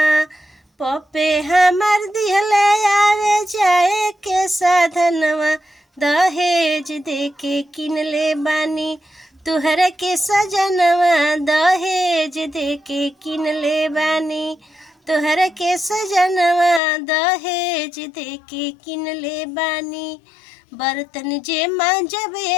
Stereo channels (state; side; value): drops out; right; at 16.8 s